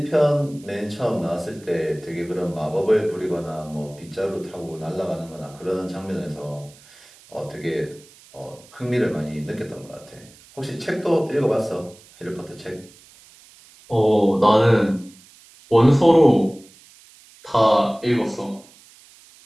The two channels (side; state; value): right; noise; hiss, 25 dB below the sound